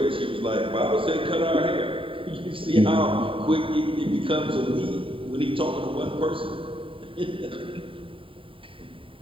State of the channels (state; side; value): late; left; 0.25 ms